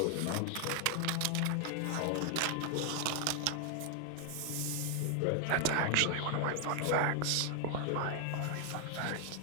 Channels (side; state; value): both; different; correlation 0.00